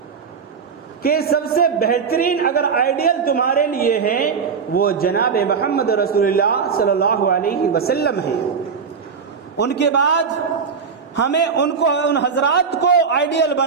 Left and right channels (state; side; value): quieter; left; 6.0 dB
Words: کہ سب سے بہترین اگر آئیڈیل تمہارے لیے ہے وہ جناب محمد رسول اللہ صلی اللہ علیہ وسلم ہے۔ ان کے بعد ہمیں ان حضرات کو آئیڈیل